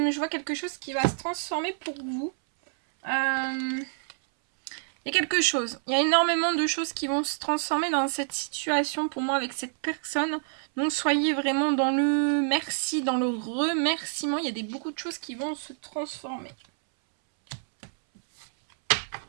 vois quelque chose qui va se transformer pour vous. Il y a quelque chose. Il y a énormément de choses qui vont se transformer dans cette situation pour moi avec cette personne. Donc soyez vraiment dans le merci, dans le remerciement. Il y a beaucoup de choses qui vont se transformer.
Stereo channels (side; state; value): left; silent; 60 dB below the other